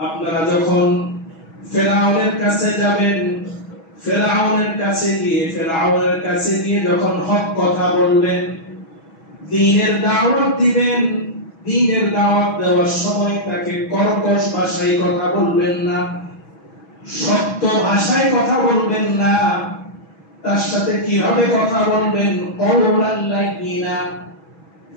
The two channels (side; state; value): right; late; 6.2 ms